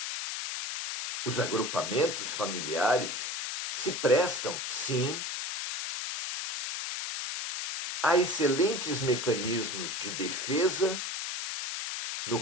os agrupamentos familiares se prestam, sim, a excelentes mecanismos de defesa,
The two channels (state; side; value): noise; left; hiss, 4 dB below the sound